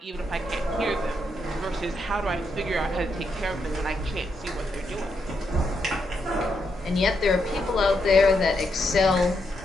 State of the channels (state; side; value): normal; both; correlation 0.80